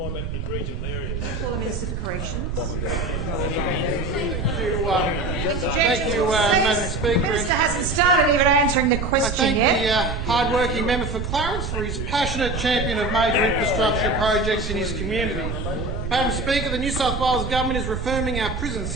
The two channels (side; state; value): right; noise; rumble, 4 dB below the sound